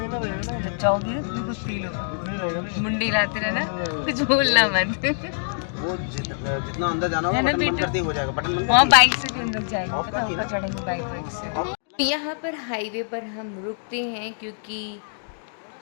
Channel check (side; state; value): right; silent; digital silence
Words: जब जाओगी ना तुम्हें कुछ फील होगा, मुंडी हिलाते रहना, कुछ बोलना मत। वो जितना अंदर जाना होगा बटन बंद करते ही हो जाएगा। बटन बंद वहाँ बाइक से भी हम लोग जाएंगे, पता ऊपर चढ़ेंगे बाइक से। यहाँ पर हाईवे पर हम रुकते हैं, क्योंकि